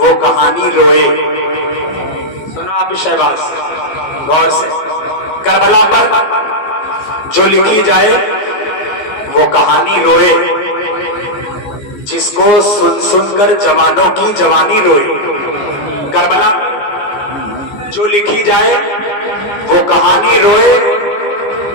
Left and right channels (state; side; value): late; right; 14 ms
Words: کہانی روئے۔ سنو آپ شہباز غور سے، کربلا پر جو لکھی جائے وہ کہانی روئے، جس کو سن سن کر جوانوں کی جوانی روئے۔ کربلا جو لکھی جائے وہ کہانی روئے،